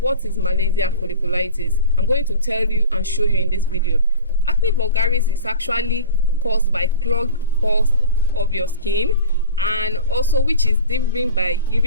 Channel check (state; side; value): inverted; both; correlation -0.35